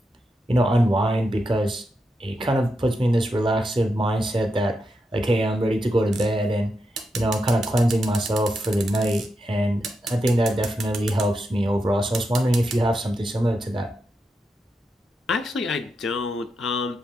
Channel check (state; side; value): normal; both; correlation 0.85